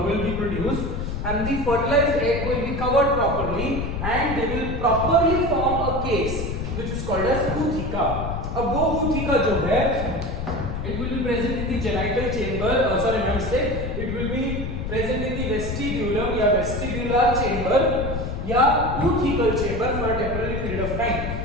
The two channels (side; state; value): left; noise; rumble, 4 dB below the sound